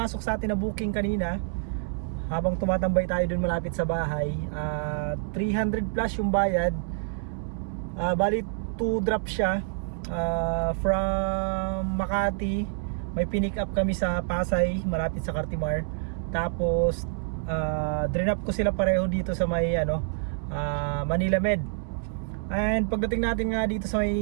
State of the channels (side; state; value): left; silent; 57 dB below the other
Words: sa atin na booking kanina. Habang tumatambay tayo dun malapit sa bahay, 300 plus yung bayad. Bali 2 drop siya from Makati. May pinick up kami sa Pasay, malapit sa Cartimar. Tapos drop ko sila pareho dito sa may Manila Med. And pagdating natin nga dito sa